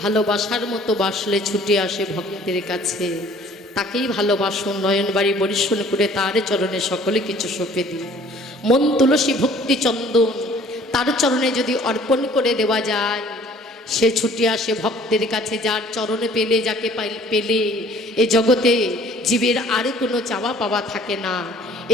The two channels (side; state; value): both; normal; correlation 0.54